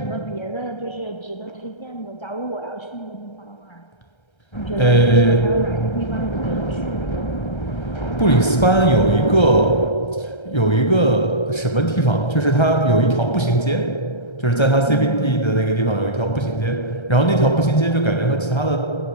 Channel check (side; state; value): right; late; 1.3 ms